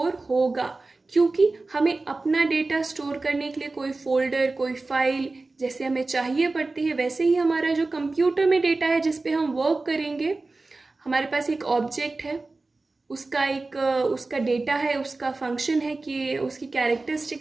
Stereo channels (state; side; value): quieter; left; 3.4 dB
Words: होगा, क्योंकि हमें अपना डेटा स्टोर करने के लिए कोई फोल्डर, कोई फाइल जैसे हमें चाहिए पड़ती है, वैसे ही हमारा जो कंप्यूटर में डेटा है जिस पे हम वर्क करेंगे, हमारे पास एक ऑब्जेक्ट है, उसका डेटा है, उसका फंक्शन है कि उसकी